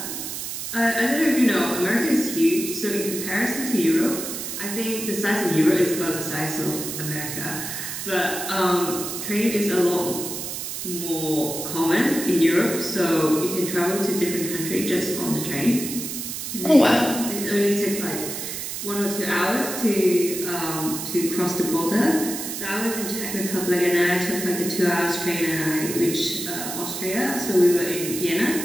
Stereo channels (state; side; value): noise; right; hiss, 6 dB below the sound